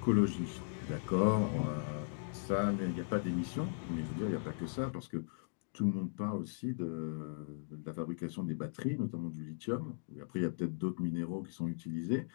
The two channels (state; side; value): silent; right; digital silence